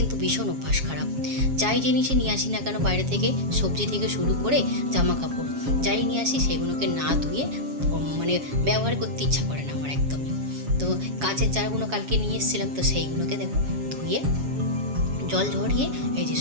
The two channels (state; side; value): late; left; 7.3 ms